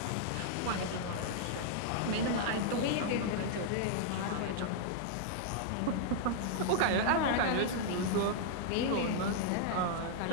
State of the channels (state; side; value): different; both; correlation -0.01